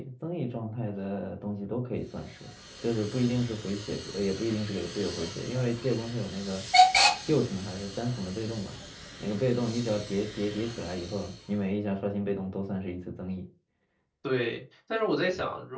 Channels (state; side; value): identical; both; correlation 1.00